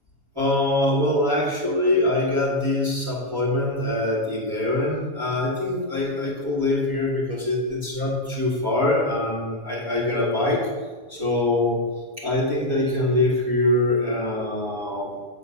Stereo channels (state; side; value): late; left; 7.2 ms